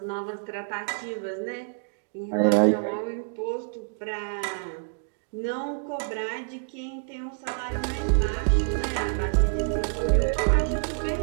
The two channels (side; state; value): left; silent; digital silence